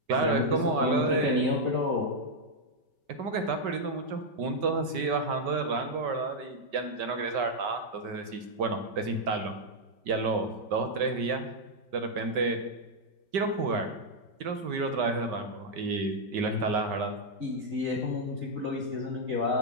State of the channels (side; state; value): left; late; 5.2 ms